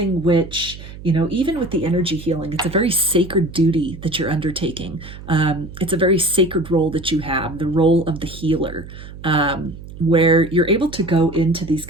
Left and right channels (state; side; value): noise; right; hum, 14 dB below the sound